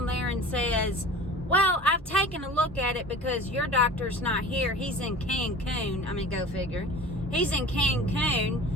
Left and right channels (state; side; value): normal; both; correlation 0.40